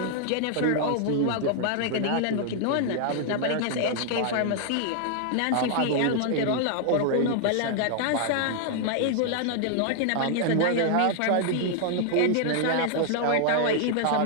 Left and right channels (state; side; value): different; both; correlation 0.00